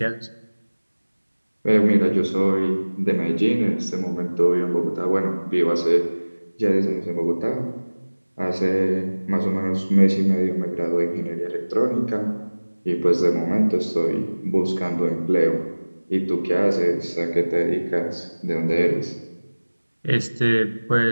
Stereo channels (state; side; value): inverted; both; correlation -1.00